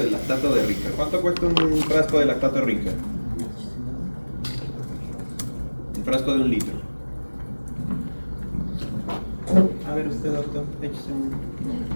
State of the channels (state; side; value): inverted; both; correlation -1.00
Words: lactato de Ringer. ¿Cuánto cuesta un frasco de lactato de Ringer? Un frasco de 1 litro. A ver usted, doctor, échese un...